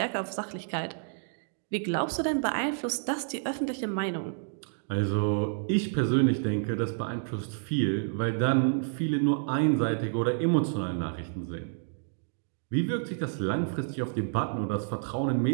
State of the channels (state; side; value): silent; left; digital silence